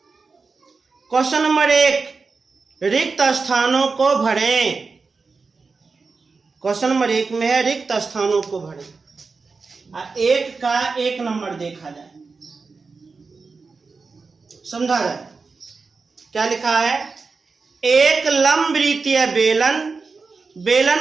क्वेश्चन नंबर 1, रिक्त स्थानों को भरें। क्वेश्चन नंबर 1 में है रिक्त स्थानों को भरें। 1 का 1 नंबर देखा जाए, समझा जाए। क्या लिखा है? एक लंबवृत्तीय बेलन,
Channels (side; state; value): left; quieter; 4.5 dB